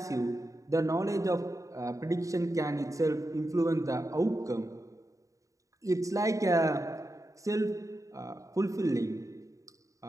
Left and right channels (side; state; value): left; late; 0.16 ms